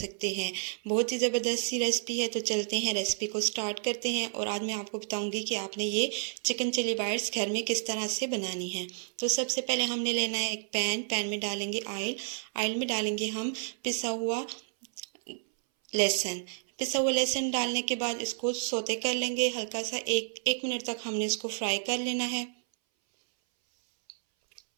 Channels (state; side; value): silent; left; 57 dB below the other